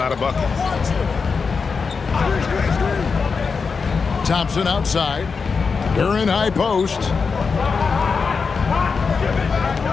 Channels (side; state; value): right; quieter; 5.1 dB